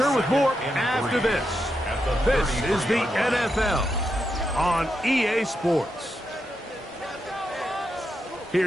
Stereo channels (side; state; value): both; normal; correlation 0.85